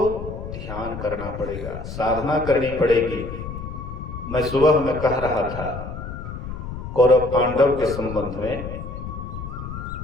ध्यान करना पड़ेगा, साधना करनी पड़ेगी। मैं सुबह में कह रहा था कौरव पांडव के संबंध में,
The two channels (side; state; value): left; noise; rumble, 8 dB below the sound